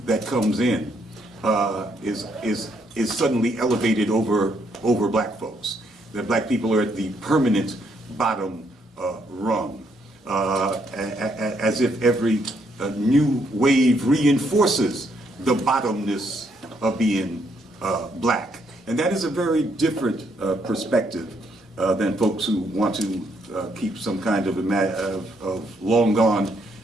that comes in is suddenly elevated over black folks. That black people are at the permanent bottom rung, as if every new wave reinforces the bottomness of being black. And that is a very different perspective than folks who want to keep some kind of long gone,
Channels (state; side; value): normal; both; correlation 0.73